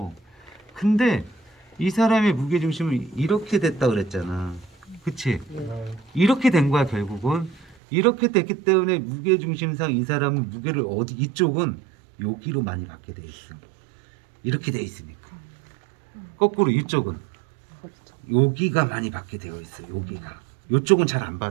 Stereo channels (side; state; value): left; drops out; at 7.8 s